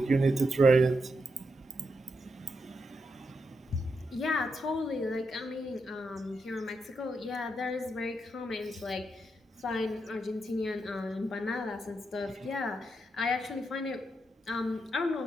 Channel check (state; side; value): normal; both; correlation 0.83